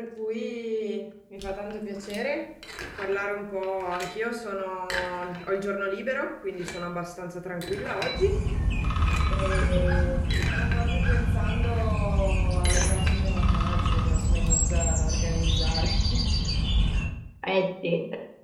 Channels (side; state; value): both; identical; correlation 1.00